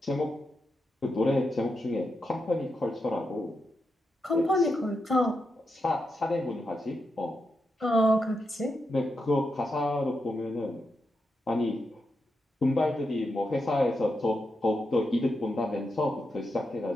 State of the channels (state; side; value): normal; both; correlation 0.86